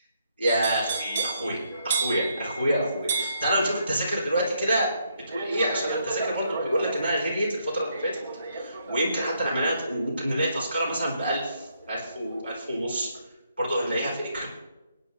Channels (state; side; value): inverted; both; correlation -0.75